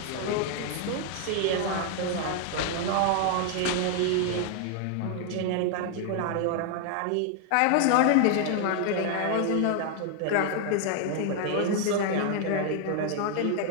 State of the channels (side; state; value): both; different; correlation 0.00